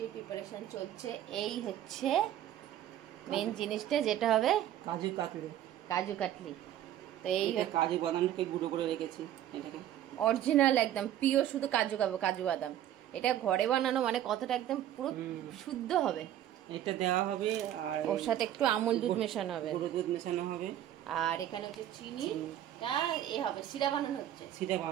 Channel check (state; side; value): quieter; left; 11.8 dB